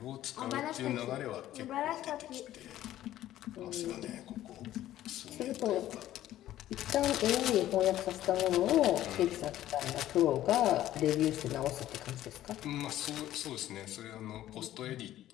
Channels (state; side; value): quieter; right; 13.4 dB